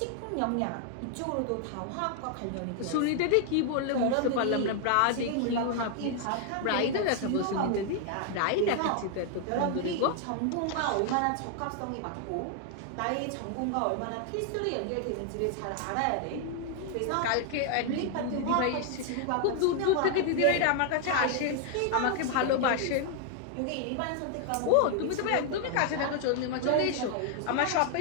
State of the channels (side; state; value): both; different; correlation 0.00